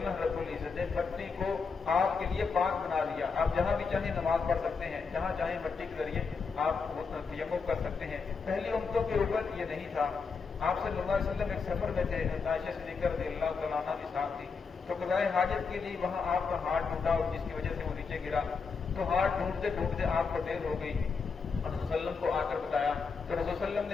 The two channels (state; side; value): quieter; right; 5.1 dB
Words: رب العزت نے مٹی کو آپ کے لیے پاک بنا دیا. آپ جہاں بھی چاہیں نماز پڑھ سکتے ہیں، جہاں چاہیں مٹی کے ذریعے آپ تیمم کر سکتے ہیں. پہلی امتوں کے اوپر یہ نہیں تھا. آپ صلی اللہ علیہ وسلم ایک سفر میں تھے، عائشہ صدیقہ رضی اللہ تعالیٰ عنہ بھی ساتھ تھی، تو قضائے حاجت کے لیے وہاں آپ کا ہاتھ ٹوٹا اور جس کی وجہ سے وہ نیچے گرا، تو ہاتھ ڈھونڈتے ڈھونڈتے آپ کو دیر ہو گئی. رسول صلی اللہ علیہ وسلم کو آ کر بتایا تو رسول صلی اللہ علیہ وسلم